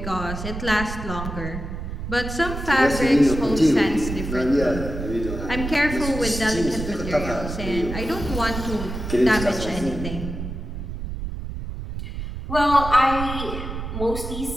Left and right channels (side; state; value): right; noise; rumble, 6 dB below the sound